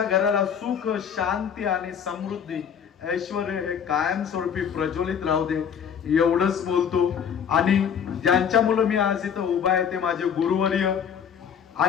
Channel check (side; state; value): right; quieter; 7.7 dB